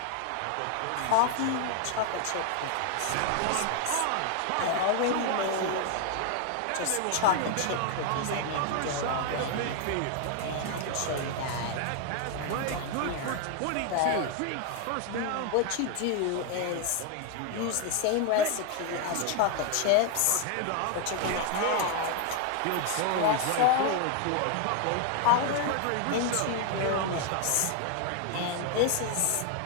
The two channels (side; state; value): both; different; correlation 0.01